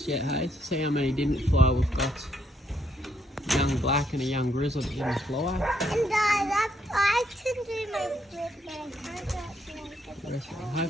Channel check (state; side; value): normal; both; correlation 0.74